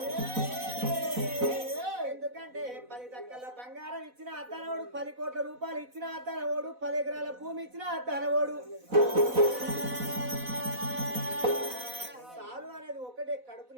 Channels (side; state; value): left; late; 4.0 ms